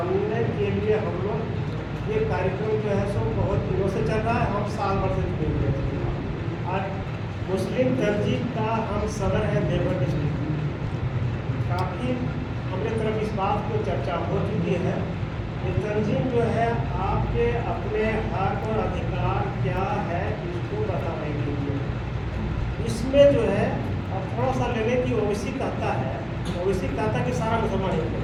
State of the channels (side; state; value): both; identical; correlation 1.00